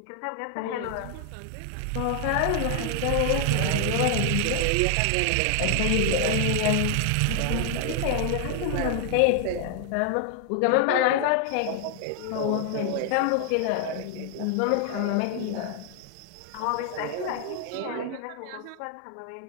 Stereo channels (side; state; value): both; different; correlation 0.00